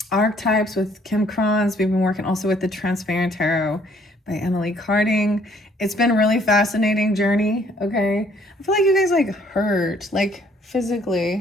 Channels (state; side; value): normal; both; correlation 0.63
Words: archetypes with Kim Kranz. We've been working also with the Transparent Tarot by Emily Carding. It's been a really fascinating journey. Okay, I feel like you guys like hurt, like